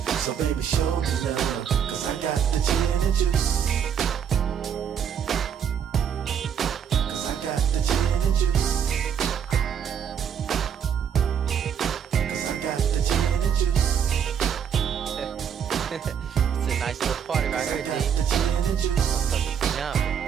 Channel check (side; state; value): left; quieter; 8.0 dB